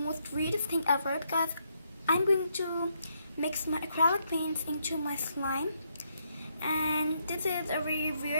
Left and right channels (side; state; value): both; inverted; correlation -0.77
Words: weirdest thing ever because I'm going to mix my acrylic paints into my slime, and this is a very